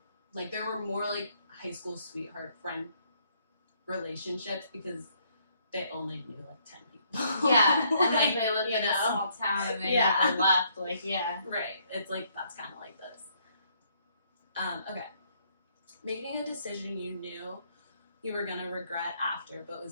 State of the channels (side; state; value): both; inverted; correlation -0.69